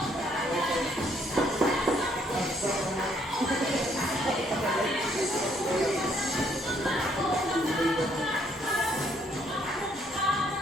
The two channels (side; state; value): both; normal; correlation 0.68